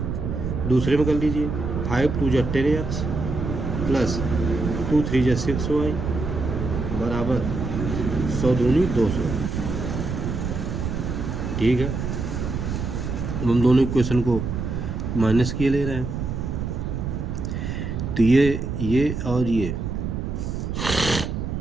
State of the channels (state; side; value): noise; right; rumble, 3 dB below the sound